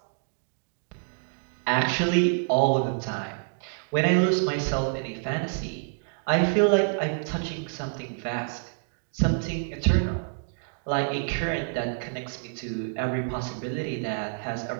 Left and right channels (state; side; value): silent; left; digital silence